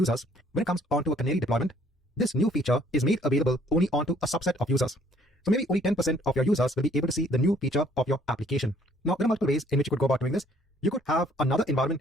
when it comes onto a canary deployment, this new feature is made available only onto a subset of users. So maybe only 10% of your users will be able to see the new feature of your application. Now, there are multiple ways in which you could go about doing this. You could have another environment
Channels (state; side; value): normal; both; correlation 0.61